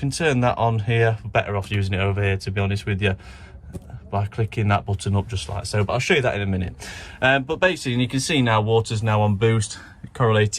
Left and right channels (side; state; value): both; identical; correlation 1.00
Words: turn that on here. We're better off using it over here, to be honest with you, by clicking that button up just like so, but I'll show you that in a minute. But basically, you can see now water's now on boost,